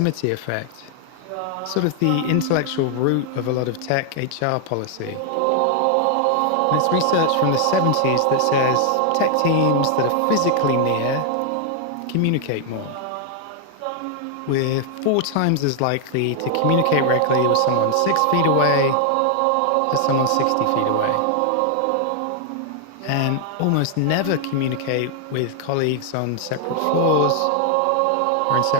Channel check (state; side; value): different; both; correlation 0.00